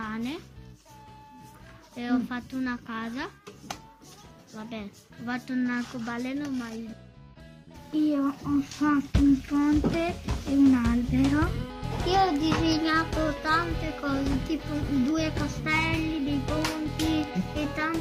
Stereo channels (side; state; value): both; identical; correlation 1.00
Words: e ho fatto una casa. Vabbè, ho fatto un arcobaleno, ma io ho fatto un ponte e un albero. Io ho disegnato tante cose, tipo 2 castelli, dei ponti e